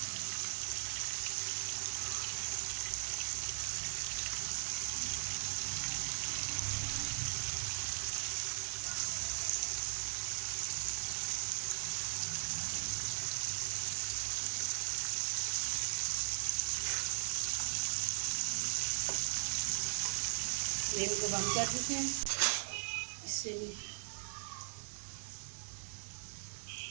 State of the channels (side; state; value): left; silent; 52 dB below the other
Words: फ्लेम को बंद कर देते हैं इससे भी।